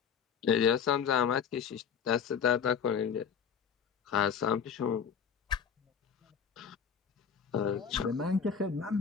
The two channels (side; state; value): right; quieter; 7.2 dB